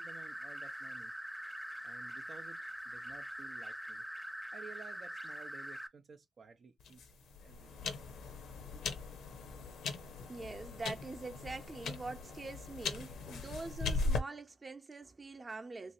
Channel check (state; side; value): normal; both; correlation 0.71